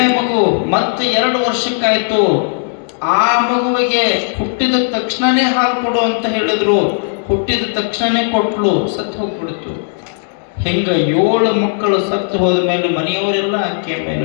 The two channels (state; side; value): silent; right; digital silence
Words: ಮಗು ಮತ್ತೆ 2 ವರ್ಷಕ್ಕಾಯ್ತು. ಆ ಮಗುವಿಗೆ ಹುಟ್ಟಿದ ತಕ್ಷಣನೇ ಹಾಲು ಕೊಡು ಅಂತ ಹೇಳಿದ್ರು, ಹುಟ್ಟಿದ ತಕ್ಷಣನೇ ಕೊಟ್ಲು, ಸತ್ತು ಹೋಗ್ಬಿಡ್ತು. ಹಿಂಗ 7 ಮಕ್ಕಳು ಸತ್ತು ಹೋದ ಮೇಲೆ ಮನೆಯವರೆಲ್ಲ ಆಕೆಯ ಮೇಲೆ